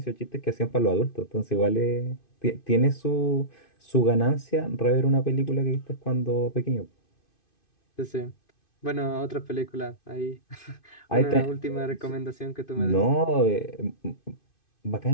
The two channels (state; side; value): late; right; 2.5 ms